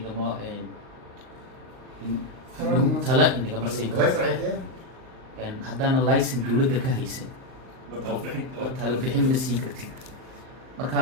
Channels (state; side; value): late; left; 38 ms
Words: tala inagama siin karo haddaana licen dowladda ka haysan tala bixin ma siin kartid marka